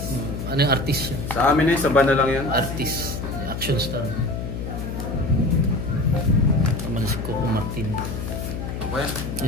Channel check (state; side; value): noise; left; hum, 5 dB below the sound